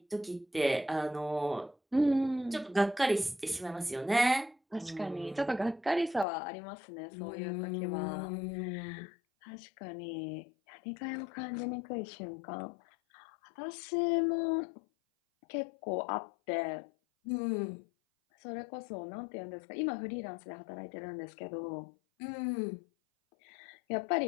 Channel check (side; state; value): right; drops out; at 6.2 s